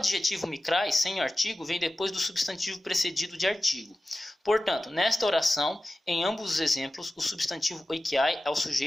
Mikrai, sem artigo, vem depois do substantivo precedido de artigo. Portanto, nesta oração, em ambos os exemplos, o substantivo Oikiai é o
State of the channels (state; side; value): normal; both; correlation 0.95